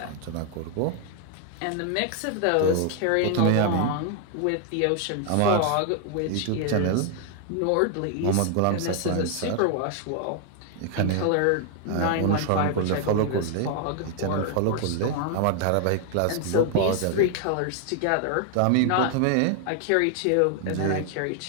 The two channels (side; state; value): both; different; correlation 0.00